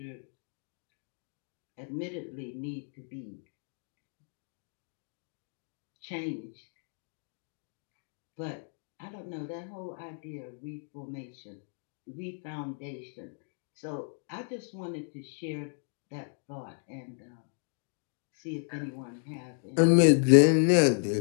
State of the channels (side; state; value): right; silent; 56 dB below the other